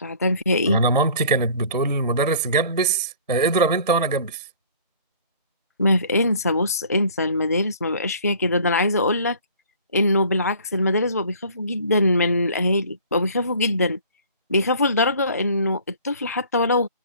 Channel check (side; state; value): both; inverted; correlation -0.50